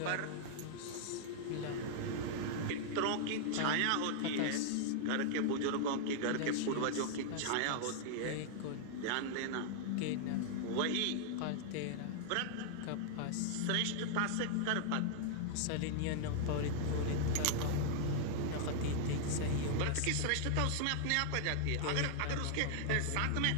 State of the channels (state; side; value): different; both; correlation -0.01